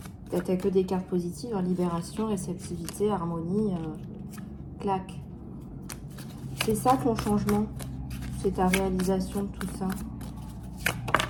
T'as que des cartes positives, hein, libération, réceptivité, harmonie, clac. C'est ça ton changement, c'est ta réalisation de tout ça.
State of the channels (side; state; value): both; identical; correlation 1.00